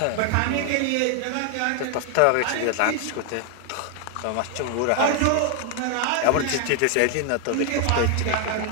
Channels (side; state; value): both; different; correlation 0.00